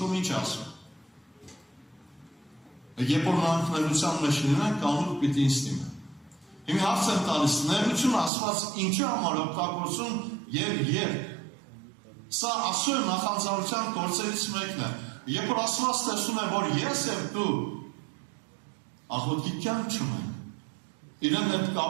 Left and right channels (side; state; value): left; drops out; at 8.3 s